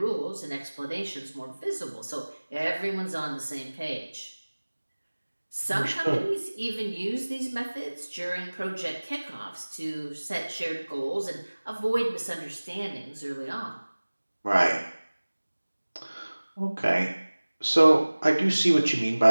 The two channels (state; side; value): inverted; both; correlation -1.00